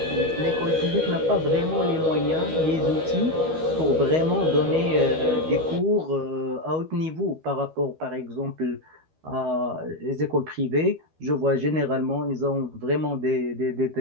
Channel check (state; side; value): late; left; 12 ms